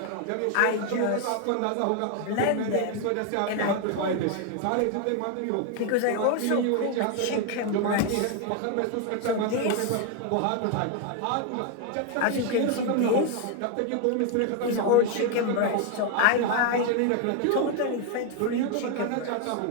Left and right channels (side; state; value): both; different; correlation 0.01